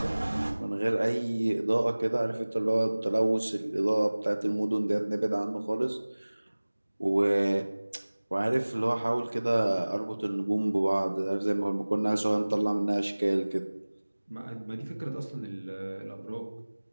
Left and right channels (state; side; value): inverted; both; correlation -1.00